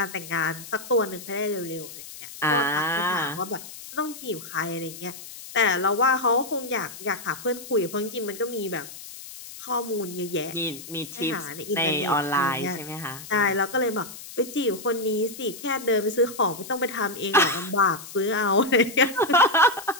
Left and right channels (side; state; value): left; noise; hiss, 14 dB below the sound